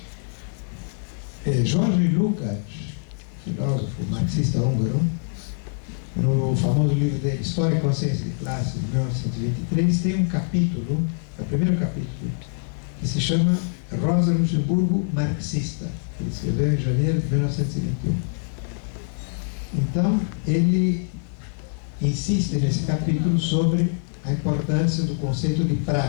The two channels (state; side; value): silent; right; 62 dB below the other